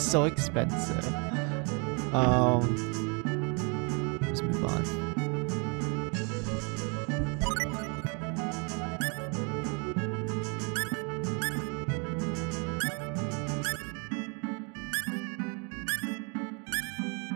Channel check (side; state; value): left; quieter; 34.4 dB